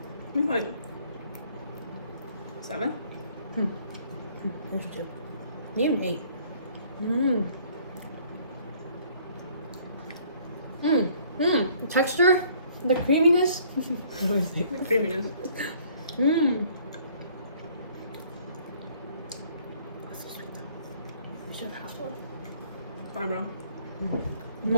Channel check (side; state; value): both; inverted; correlation -0.59